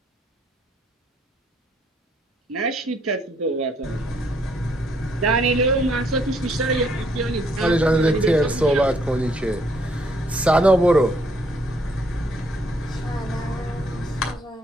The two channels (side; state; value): both; normal; correlation 0.69